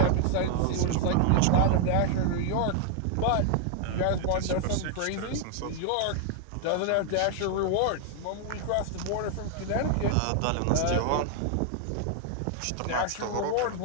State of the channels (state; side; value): different; both; correlation 0.00